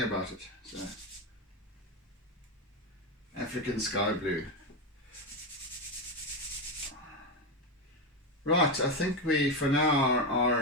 So, African sky blue. Right, I think we for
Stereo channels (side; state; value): both; normal; correlation 0.11